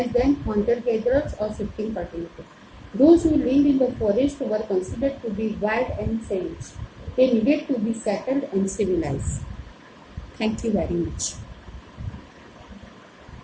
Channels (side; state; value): both; identical; correlation 1.00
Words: than hunter-gatherers or shifting cultivators. Those who lived in the forest were considered to be wild and savage. They needed to be settled and civilized. Thank you very much.